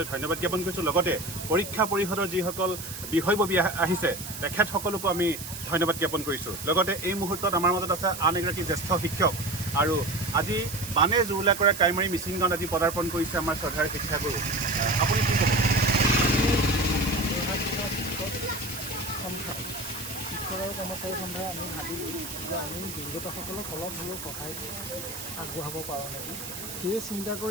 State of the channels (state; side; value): noise; right; hiss, 9 dB below the sound